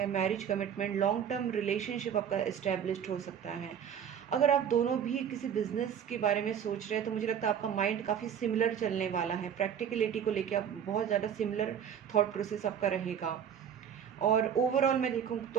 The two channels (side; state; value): left; quieter; 8.4 dB